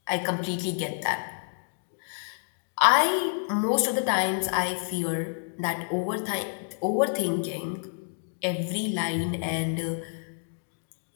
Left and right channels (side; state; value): right; silent; digital silence